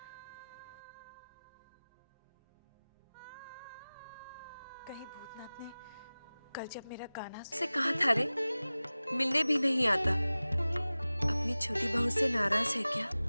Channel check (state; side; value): inverted; both; correlation -0.98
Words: कहीं भूतनाथ ने कल जब मेरा गाना से कहा था रे, मिलने भी नहीं आता। अपनी छोटी बहू से नाराज है क्या?